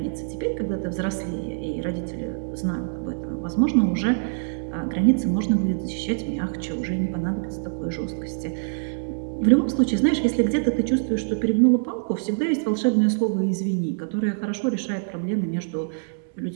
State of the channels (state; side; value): silent; left; 62 dB below the other